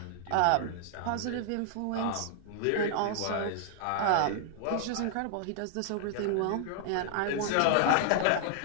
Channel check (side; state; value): both; different; correlation -0.01